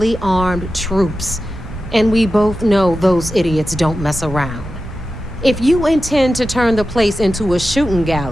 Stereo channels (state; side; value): noise; right; hum, 17 dB below the sound